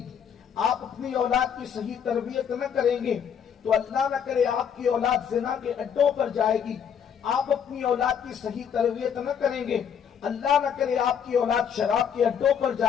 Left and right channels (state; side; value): quieter; right; 7.9 dB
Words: آپ اپنی اولاد کی صحیح تربیت نہ کریں گے تو اللہ نہ کرے آپ کی اولاد زنا کے اڈوں پر جائے گی۔ آپ اپنی اولاد کی صحیح تربیت نہ کریں گے، اللہ نہ کرے آپ کی اولاد شراب کے اڈوں پر